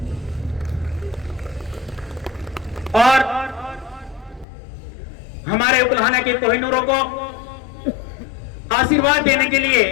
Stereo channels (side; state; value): right; drops out; at 4.5 s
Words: और हमारे उकलाना के कोहिनूरों को आशीर्वाद देने के लिए